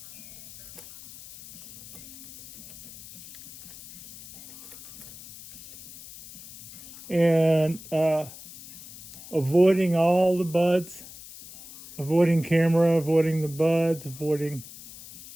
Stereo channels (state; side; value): noise; left; hiss, 16 dB below the sound